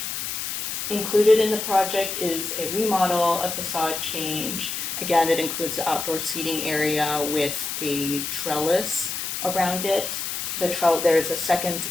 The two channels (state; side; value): noise; left; hiss, 4 dB below the sound